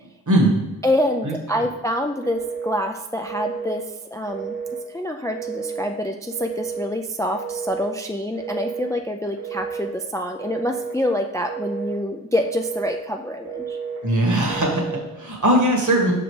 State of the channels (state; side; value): normal; both; correlation 0.48